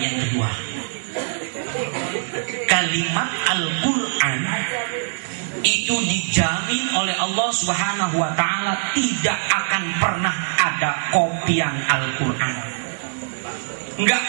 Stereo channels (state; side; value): silent; left; digital silence